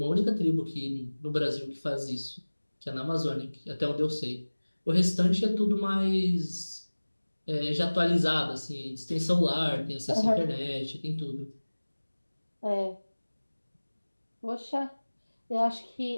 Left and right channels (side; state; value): both; inverted; correlation -1.00